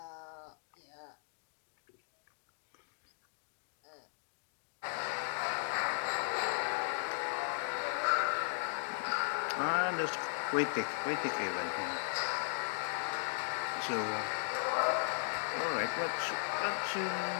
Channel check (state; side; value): silent; right; digital silence